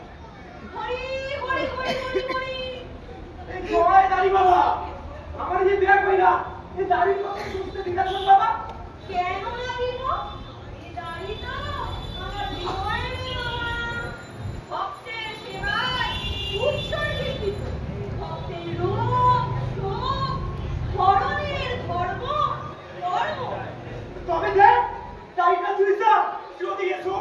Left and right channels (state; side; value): identical; both; correlation 1.00